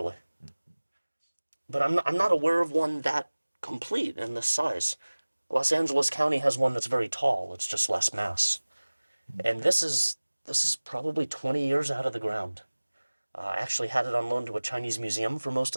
But I'm not aware of one that complete in this size. Los Angeles County has one that's very tall. It's just less mass. And this is probably 20 years out of the ground. I actually had it on loan to a Chinese museum for most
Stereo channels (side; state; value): both; inverted; correlation -1.00